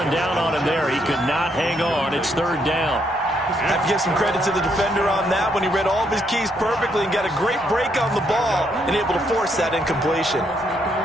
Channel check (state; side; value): normal; both; correlation 0.74